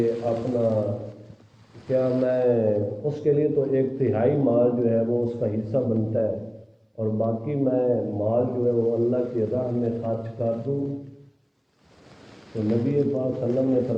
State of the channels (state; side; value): identical; both; correlation 1.00